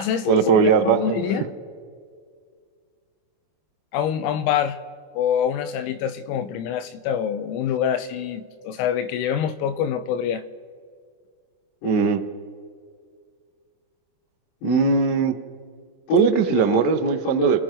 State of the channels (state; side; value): late; right; 26 ms